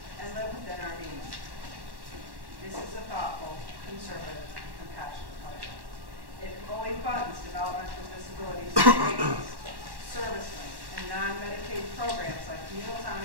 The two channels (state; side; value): late; left; 1.1 ms